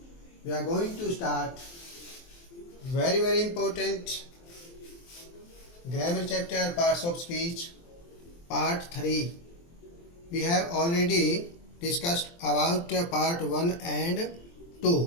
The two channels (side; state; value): right; late; 23 ms